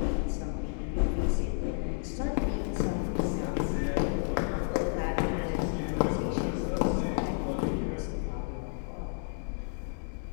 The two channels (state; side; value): silent; right; digital silence